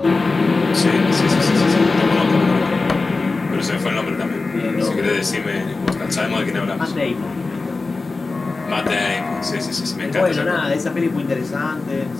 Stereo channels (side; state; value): right; quieter; 3.7 dB